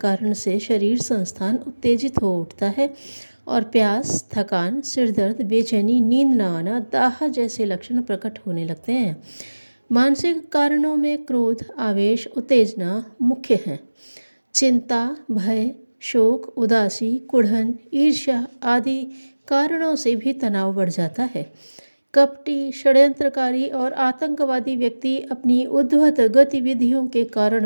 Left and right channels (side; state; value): both; inverted; correlation -1.00